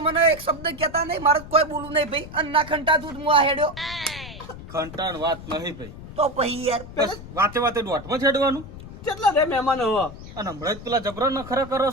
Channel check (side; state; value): left; noise; rumble, 14 dB below the sound